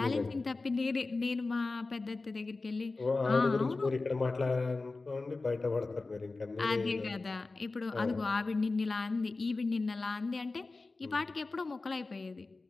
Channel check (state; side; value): quieter; right; 3.6 dB